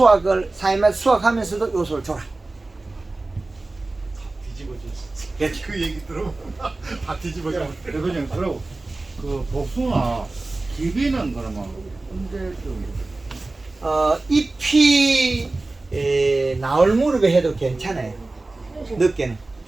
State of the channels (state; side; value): quieter; left; 3.2 dB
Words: 사이마다 수확하면서도 요소를 줘라. 뒤집어졌어. 그 얘기 들으면 다 뒤집어져. 그냥 그러고 그 복숭아 기비는 그러면 언제쯤? 잎이 나올 무렵에 해도 괜찮아요. 늦게는